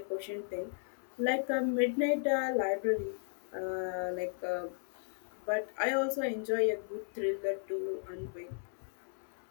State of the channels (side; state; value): right; silent; digital silence